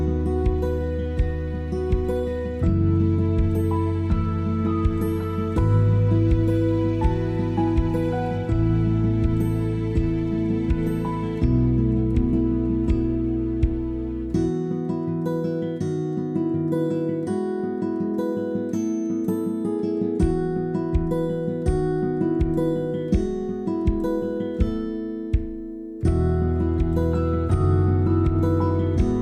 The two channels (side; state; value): both; identical; correlation 1.00